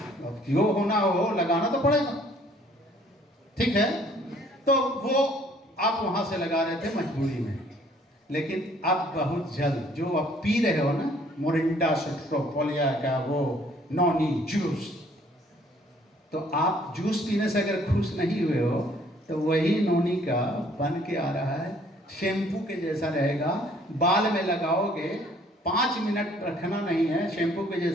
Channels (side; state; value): both; normal; correlation 0.60